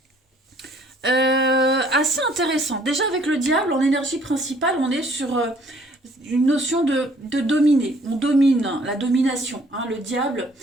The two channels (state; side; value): normal; both; correlation 0.60